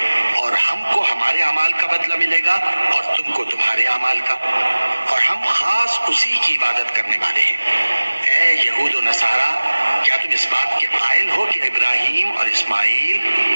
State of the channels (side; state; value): both; inverted; correlation -1.00